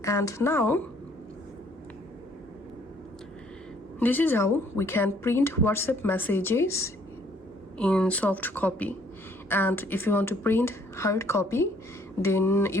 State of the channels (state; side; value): normal; both; correlation 0.63